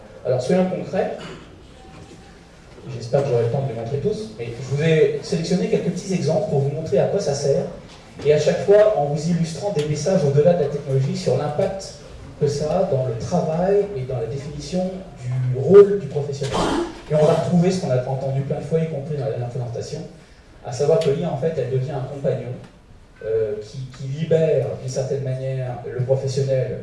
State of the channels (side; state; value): both; identical; correlation 1.00